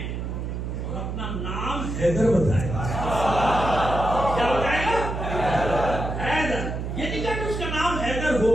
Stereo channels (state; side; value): noise; right; hum, 4 dB below the sound